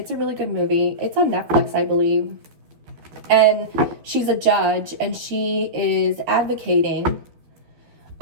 a really good movie. It's on Netflix, I believe. And she's a judge, and she is advocating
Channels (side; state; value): left; late; 12 ms